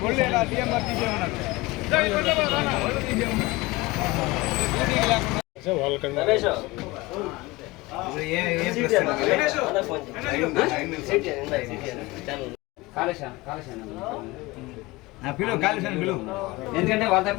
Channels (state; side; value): quieter; right; 21.4 dB